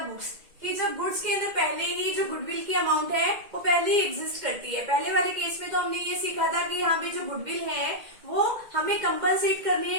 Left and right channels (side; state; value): left; late; 2.1 ms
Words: books, कि जब गुड्स के अंदर पहले ही जो गुडविल की अमाउंट है वो पहले ही एग्जिस्ट करती है। पहले वाले केस में तो हमने ये सीखा था कि यहाँ पे जो गुडविल है वो हमें कंपनसेट करनी